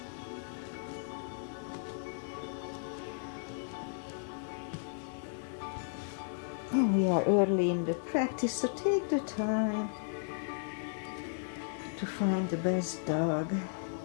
And we are early in the practice, so take the time to find the best dog.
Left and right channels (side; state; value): right; silent; digital silence